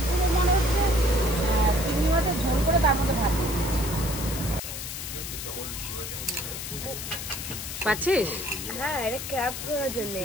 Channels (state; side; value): noise; left; hiss, 7 dB below the sound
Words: মনে হচ্ছে চিংড়ি মাছের ঝোল করে তার মধ্যে ভাত দিয়ে দিয়েছে। পাচ্ছিস? হ্যাঁ, এটা ক্র্যাব ধরার জন্য।